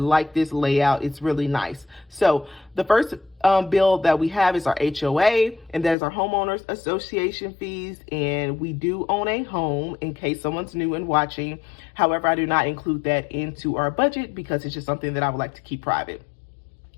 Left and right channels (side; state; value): right; drops out; at 6.0 s